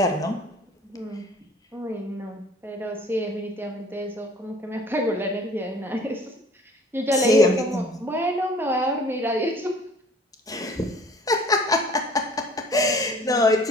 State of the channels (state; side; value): normal; both; correlation 0.50